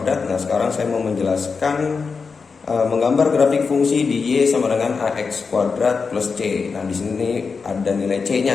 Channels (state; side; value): quieter; right; 5.0 dB